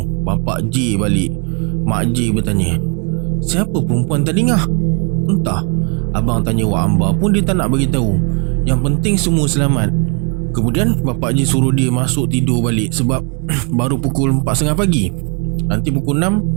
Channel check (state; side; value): quieter; left; 36.1 dB